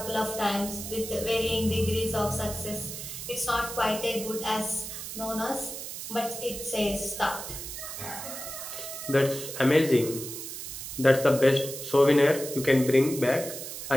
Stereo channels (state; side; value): noise; right; hiss, 8 dB below the sound